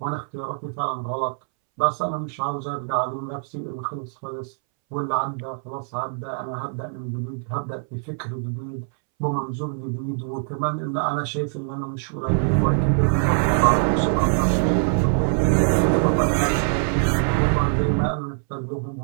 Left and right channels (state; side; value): silent; left; 63 dB below the other